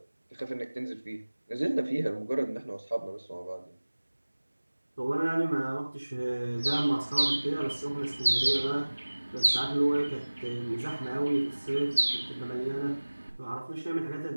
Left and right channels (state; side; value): inverted; both; correlation -1.00